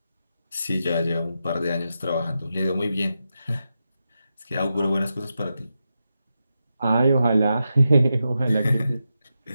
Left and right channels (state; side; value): inverted; both; correlation -0.88